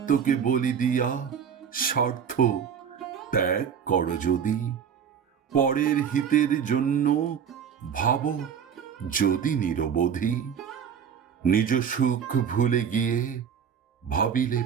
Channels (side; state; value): left; quieter; 7.6 dB